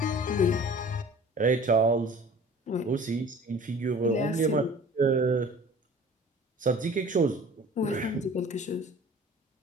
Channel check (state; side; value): normal; both; correlation 0.46